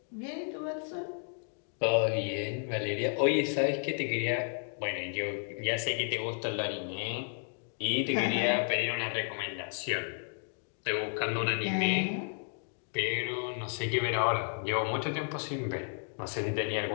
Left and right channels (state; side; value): silent; right; 56 dB below the other